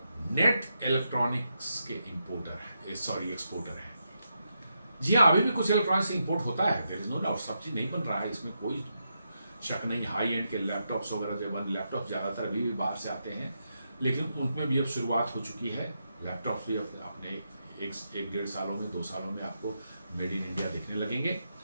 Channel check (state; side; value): inverted; both; correlation -0.84